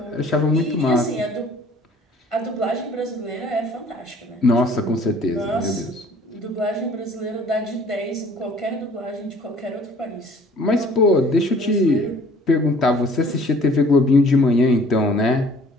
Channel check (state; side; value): normal; both; correlation 0.53